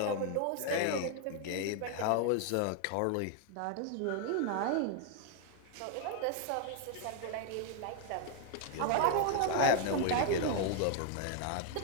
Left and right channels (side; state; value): both; different; correlation 0.00